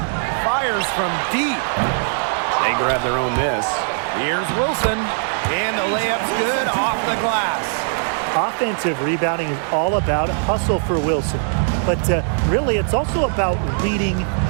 Fires from deep. They grab their own miss. Here's Wilson. And the layup's good off the glass. Offensive rebounding is all about hustle for Wilson. But really, it's also about reading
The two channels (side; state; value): left; silent; digital silence